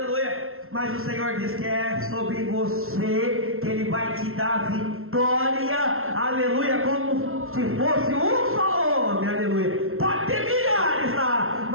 Mas o Senhor diz que é sobre você que Ele vai te dar vitória, aleluia, como se fosse um só homem, aleluia. Pode ter milhares lá,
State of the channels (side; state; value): left; late; 0.62 ms